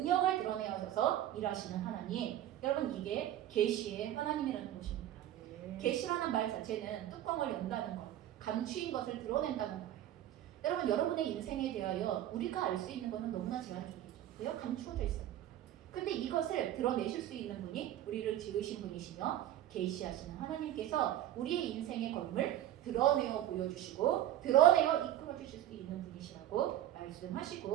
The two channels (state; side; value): quieter; left; 12.6 dB